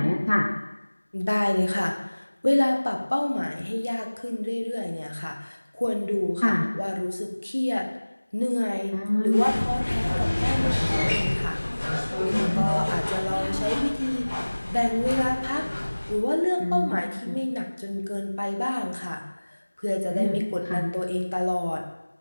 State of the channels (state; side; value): inverted; both; correlation -1.00